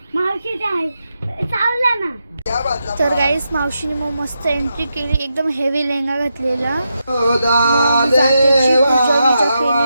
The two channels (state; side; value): inverted; both; correlation -0.86